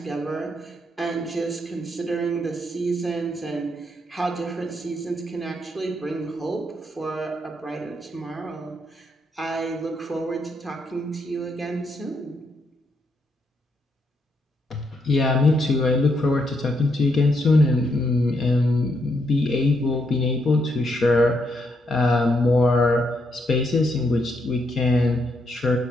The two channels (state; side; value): normal; both; correlation 0.77